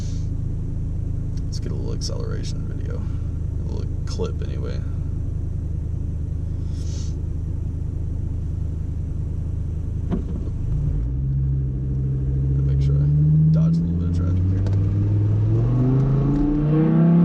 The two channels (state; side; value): identical; both; correlation 1.00